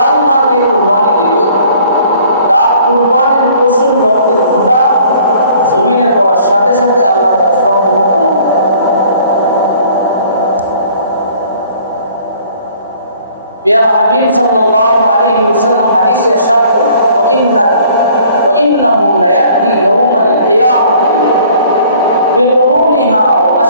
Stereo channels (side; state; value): both; inverted; correlation -0.55